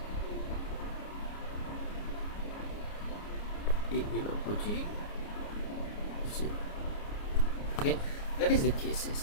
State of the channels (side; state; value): right; late; 29 ms